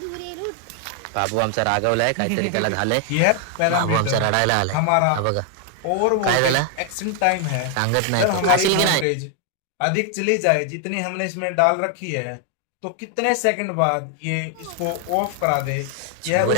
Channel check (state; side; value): different; both; correlation 0.00